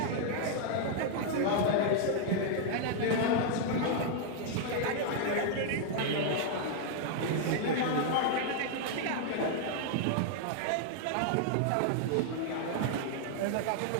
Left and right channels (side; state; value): both; different; correlation 0.00